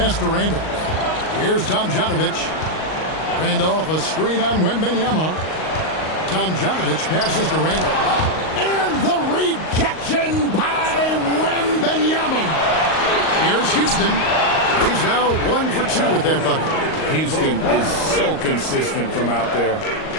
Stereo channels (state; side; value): late; right; 38 ms